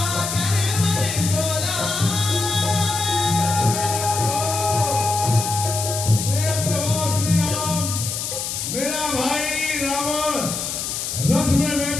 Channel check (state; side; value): noise; left; hiss, 3 dB below the sound